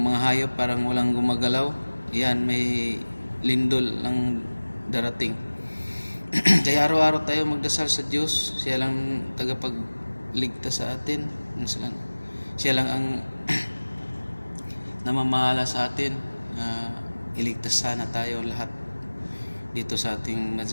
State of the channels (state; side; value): inverted; both; correlation -1.00